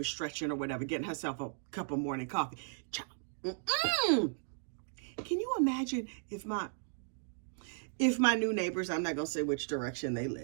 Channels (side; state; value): left; silent; digital silence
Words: stretching or whatever, getting herself a cup of morning coffee. Child. Can you imagine if my new neighbors, I'm not going to say which direction they